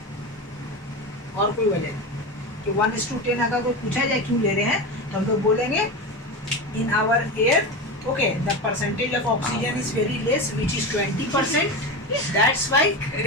और कोई वजह नहीं। कि 1:10 अगर कोई पूछा जाए क्यों ले रहे हैं, तो हम लोग बोलेंगे in our air, okay, the percentage of oxygen is very less which is 20%, that's why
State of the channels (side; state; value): both; normal; correlation 0.22